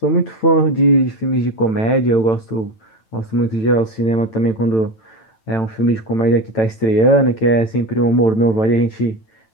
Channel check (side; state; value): right; late; 9.0 ms